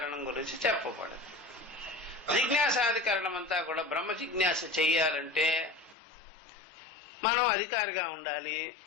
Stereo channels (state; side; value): drops out; right; at 6.0 s